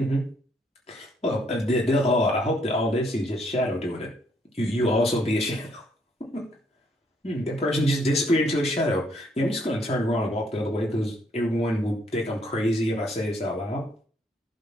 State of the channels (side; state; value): both; normal; correlation 0.69